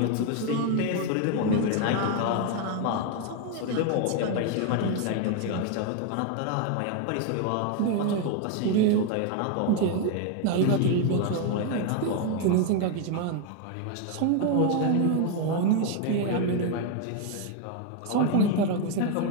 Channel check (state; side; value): different; both; correlation 0.01